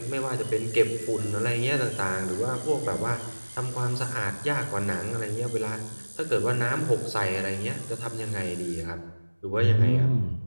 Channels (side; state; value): both; inverted; correlation -1.00